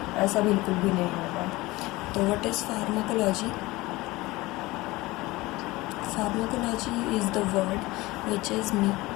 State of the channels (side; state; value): right; quieter; 20.4 dB